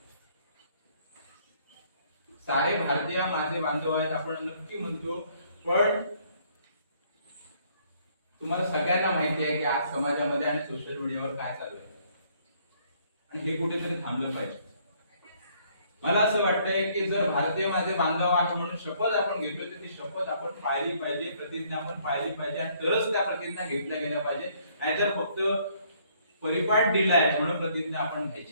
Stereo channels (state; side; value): inverted; both; correlation -0.65